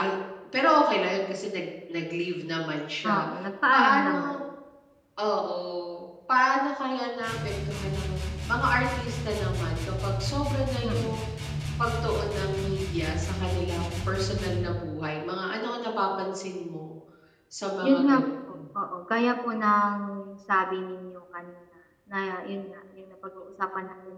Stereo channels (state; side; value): identical; both; correlation 1.00